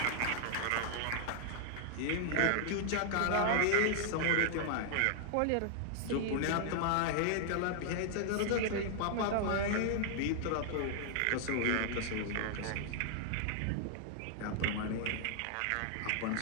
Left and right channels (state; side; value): different; both; correlation 0.00